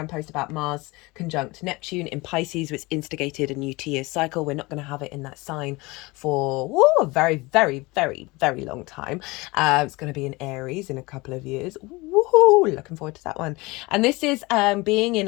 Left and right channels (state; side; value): quieter; right; 23.2 dB